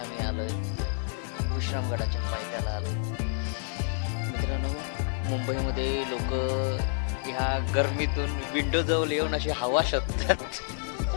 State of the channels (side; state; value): right; silent; 59 dB below the other